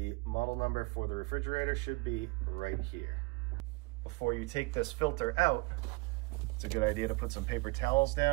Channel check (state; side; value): quieter; left; 27.2 dB